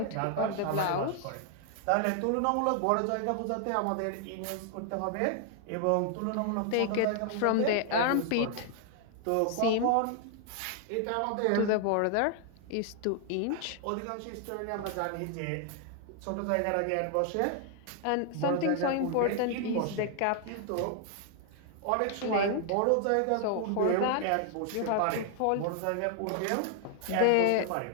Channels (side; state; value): both; different; correlation 0.00